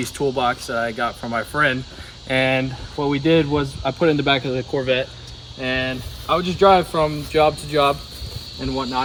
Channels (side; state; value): both; identical; correlation 1.00